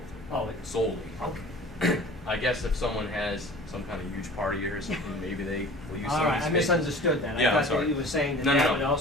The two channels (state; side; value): normal; both; correlation 0.44